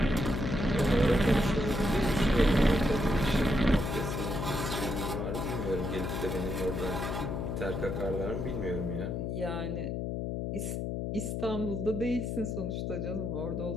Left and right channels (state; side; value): noise; left; hum, 2 dB below the sound